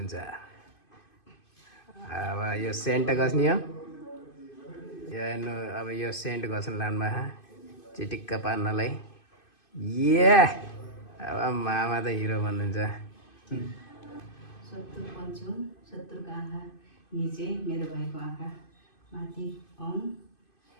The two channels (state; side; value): late; right; 2.5 ms